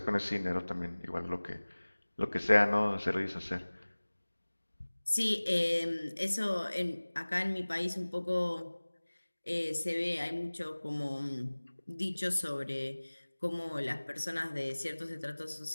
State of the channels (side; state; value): both; inverted; correlation -1.00